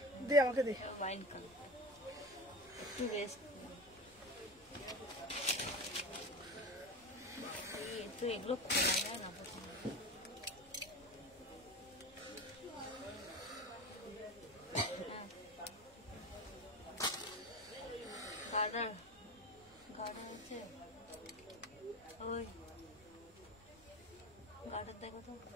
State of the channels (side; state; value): both; normal; correlation 0.28